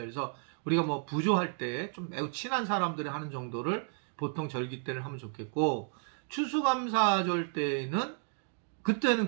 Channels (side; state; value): left; silent; 56 dB below the other